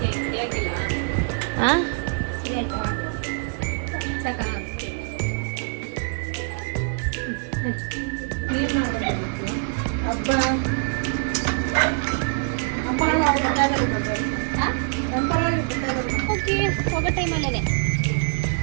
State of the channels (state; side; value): silent; left; 62 dB below the other